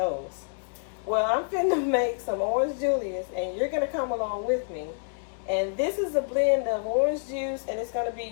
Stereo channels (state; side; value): silent; right; 59 dB below the other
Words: Well, I'm finna make some Orange Julius and you're gonna come along with me. And this is a blend of orange juice, and it's gonna be